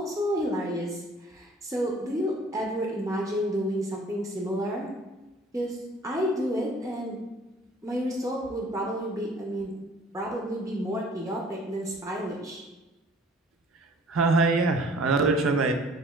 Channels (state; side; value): normal; both; correlation 0.53